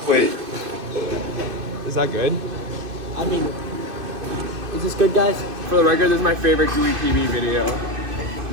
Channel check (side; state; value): left; late; 2.5 ms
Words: Wait. Is that good? I mean, is this good, guys? For the record, this is my favorite Gooey PB video.